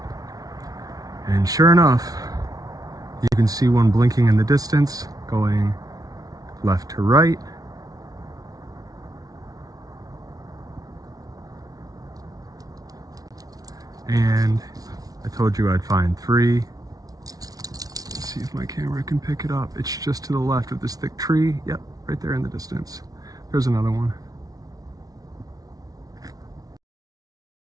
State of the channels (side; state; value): left; late; 0.18 ms